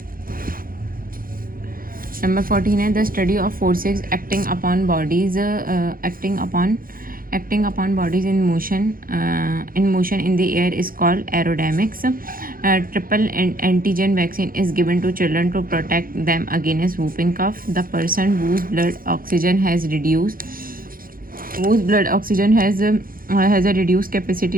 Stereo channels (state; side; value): late; left; 0.41 ms